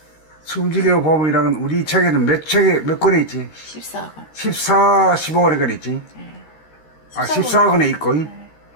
숨죽여 범이라는 우리 책에는 몇 권에 있지? 14권. 15권에 권 있지? 네. 14권에 있고.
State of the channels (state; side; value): late; right; 13 ms